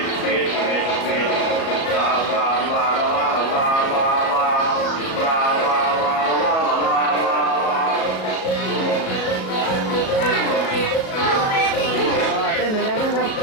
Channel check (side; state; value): right; late; 37 ms